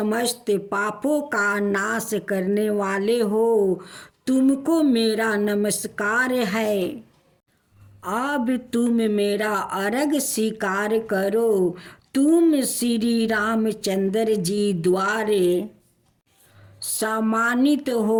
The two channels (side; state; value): both; identical; correlation 1.00